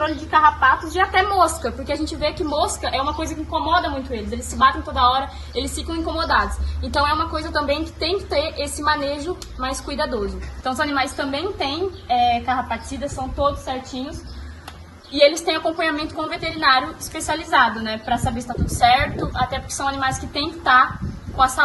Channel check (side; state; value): both; identical; correlation 1.00